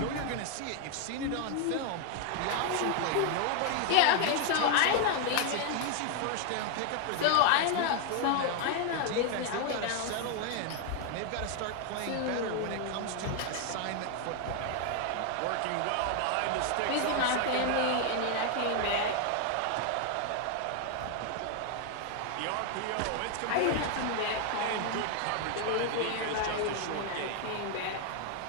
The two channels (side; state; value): both; different; correlation 0.00